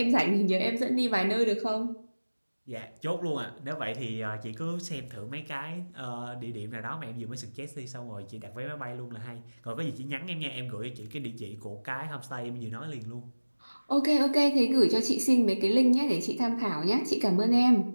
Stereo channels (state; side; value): inverted; both; correlation -1.00